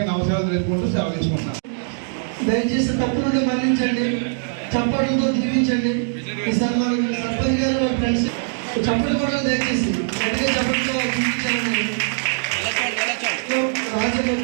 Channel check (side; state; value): left; silent; digital silence